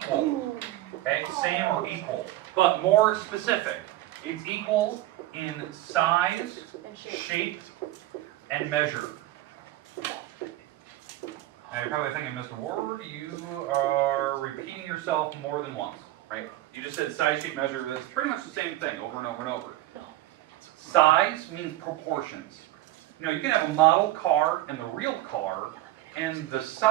Okay? Same or equal. But more specific. It's equal in size, shape, and measure. Now you're probably thinking, Mr. Ward, you are repeating yourself more than once, right? You just said size, shape, measure. That's pretty much the same thing over and over and over. Size means proportions. You know, you can have a model car and the real car, and the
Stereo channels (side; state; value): left; quieter; 15.7 dB